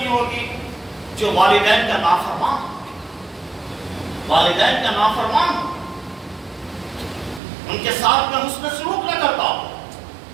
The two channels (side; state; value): left; drops out; at 7.4 s